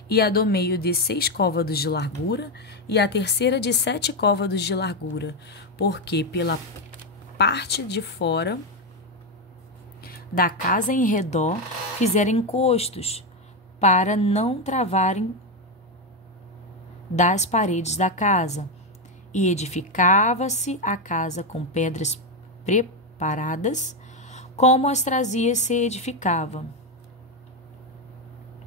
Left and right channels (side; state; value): both; normal; correlation 0.08